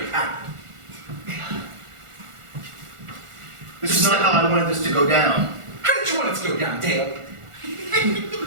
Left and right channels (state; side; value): late; left; 1.4 ms